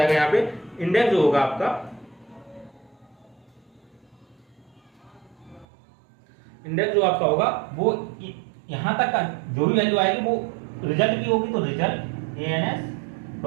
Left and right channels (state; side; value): drops out; left; at 5.7 s